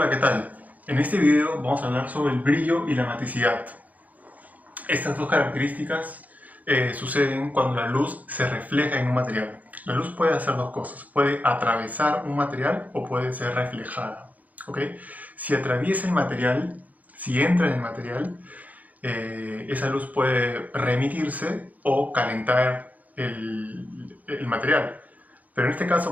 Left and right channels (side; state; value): left; late; 0.077 ms